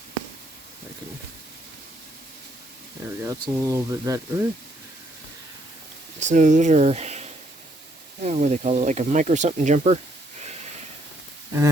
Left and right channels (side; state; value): both; normal; correlation 0.71